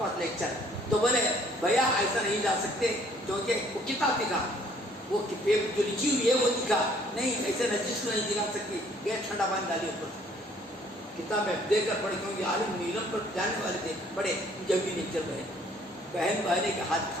لے چل. تو بولے بھیا ایسا نہیں جا سکتے، کیونکہ وہ کتاب دکھا، وہ جو لکھی ہوئی ہے وہ دکھا نہیں، ایسے نجس کو نہیں دکھا سکتی. یہ ٹھنڈا پانی ڈالی اوپر، کتاب دے کر پڑھے، کیونکہ عالم نیلم پر جانے والے تھے، پڑھے جب بھی نہیں چل رہے. بہن بہنے کے ہاتھ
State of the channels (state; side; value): normal; both; correlation 0.60